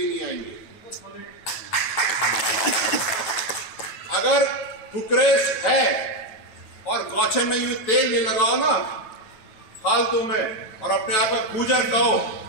नहीं आएंगे। अगर फुकरेश है और गौछन नहीं हुई, तेल नहीं लगाओ ना फालतू में, और अपने आप का गुजर कहो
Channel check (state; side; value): late; right; 9.1 ms